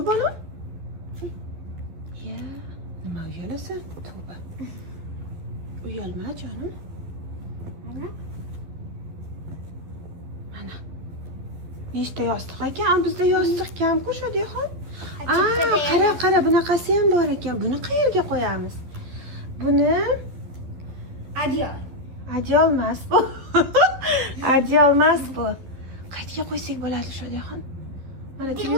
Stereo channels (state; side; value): late; left; 12 ms